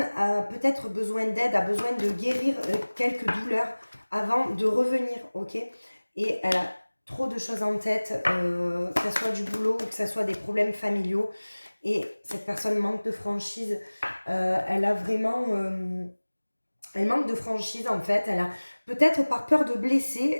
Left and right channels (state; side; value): inverted; both; correlation -1.00